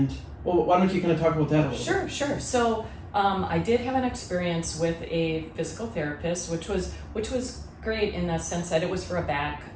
well, why don't you kind of talk about that a little bit? Sure. So I did have an experience with a physical therapist, which was great in the sense that it was for a back,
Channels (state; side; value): identical; both; correlation 1.00